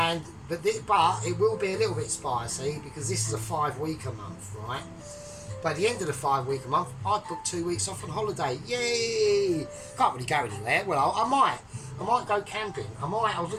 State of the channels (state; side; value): identical; both; correlation 1.00